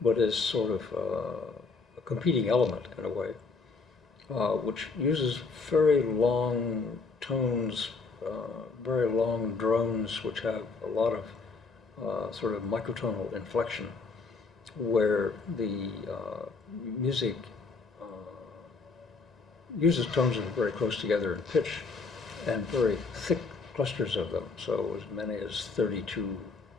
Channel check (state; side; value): quieter; right; 4.3 dB